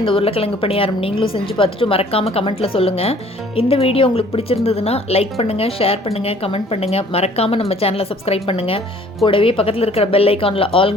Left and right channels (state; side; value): normal; both; correlation 0.55